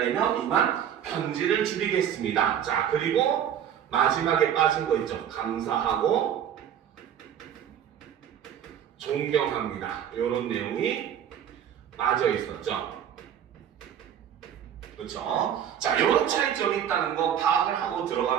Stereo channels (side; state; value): left; quieter; 9.4 dB